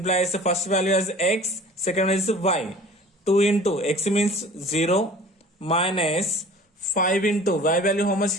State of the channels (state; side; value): normal; both; correlation 0.45